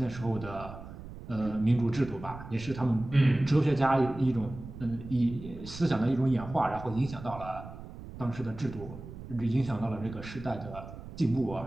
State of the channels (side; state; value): right; noise; rumble, 13 dB below the sound